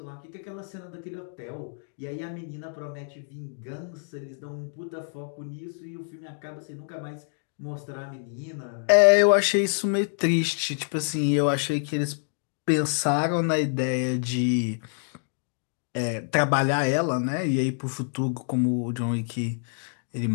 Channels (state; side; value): silent; right; digital silence